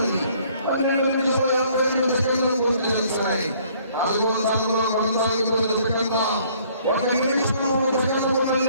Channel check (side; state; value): both; inverted; correlation -0.60